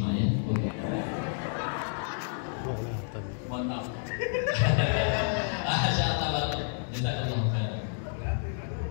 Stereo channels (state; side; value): silent; right; digital silence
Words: ya. Oke. Mohon maaf. Masyaallah banget. Jazakallahu khairan.